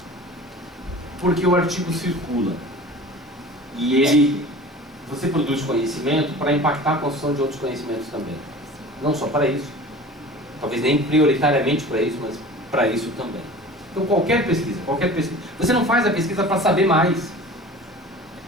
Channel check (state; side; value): normal; both; correlation 0.40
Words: Porque o artigo circula. E você produz conhecimento para impactar a construção de outros conhecimentos também. Não só para isso. Talvez nem prioritariamente para isso, mas para isso também. Então qualquer pesquisa. Você não faz a pesquisa para saber mais.